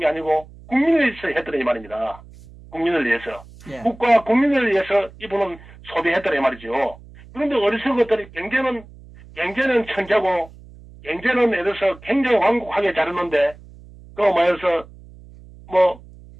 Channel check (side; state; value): right; noise; hum, 21 dB below the sound